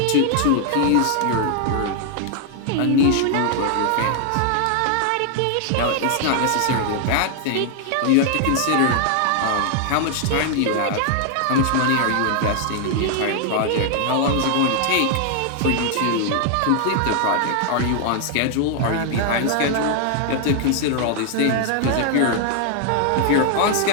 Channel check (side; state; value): both; different; correlation 0.00